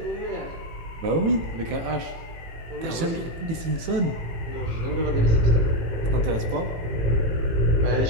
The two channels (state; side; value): late; left; 18 ms